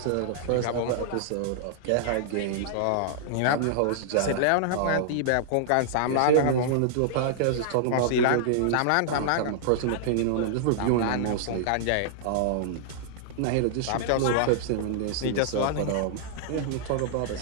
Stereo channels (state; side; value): different; both; correlation -0.01